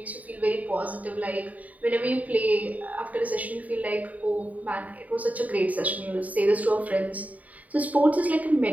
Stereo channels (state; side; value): late; left; 0.072 ms